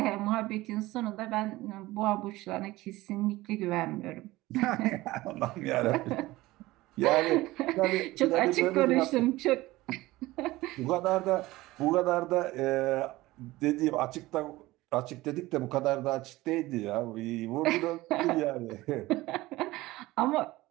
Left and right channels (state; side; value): quieter; left; 18.6 dB